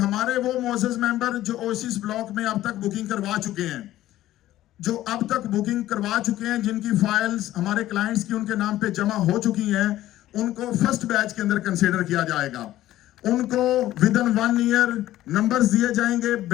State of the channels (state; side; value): quieter; right; 14.3 dB